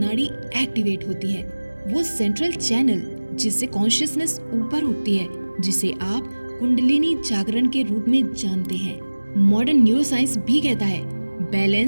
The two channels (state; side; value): inverted; both; correlation -1.00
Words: एक्टिवेट होती है, वो सेंट्रल चैनल जिससे कॉन्शियसनेस ऊपर उठती है, जिसे आप कुंडलिनी जागरण के रूप में जानते हैं। मॉडर्न न्यूरोसाइंस भी कहता है